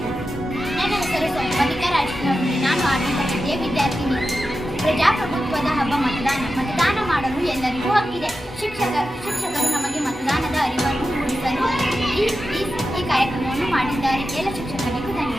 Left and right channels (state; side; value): normal; both; correlation 0.91